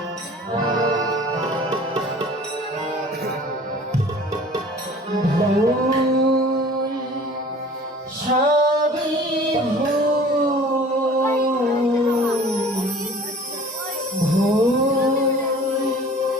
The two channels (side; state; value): both; normal; correlation 0.47